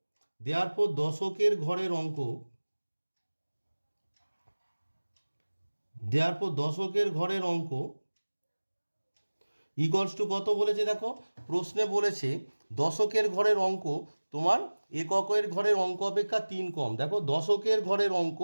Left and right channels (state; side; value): inverted; both; correlation -1.00